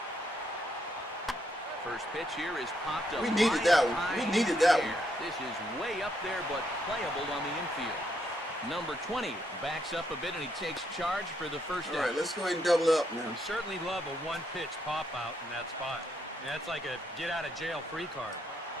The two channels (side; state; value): both; normal; correlation 0.76